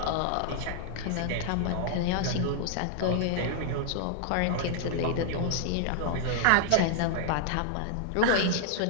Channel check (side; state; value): both; different; correlation -0.01